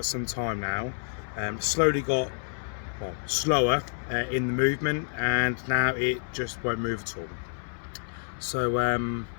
some time now. Slowly got slower in the movement, and now it just won't move at all. So yeah, I'm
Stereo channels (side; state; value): right; silent; 58 dB below the other